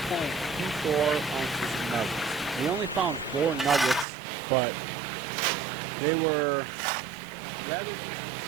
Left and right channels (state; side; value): drops out; left; at 4.0 s